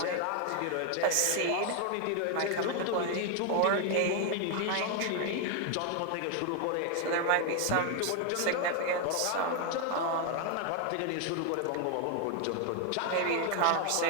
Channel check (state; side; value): different; both; correlation 0.01